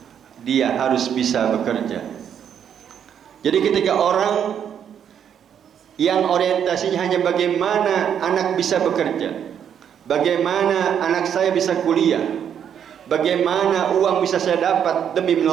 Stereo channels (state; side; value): quieter; left; 8.6 dB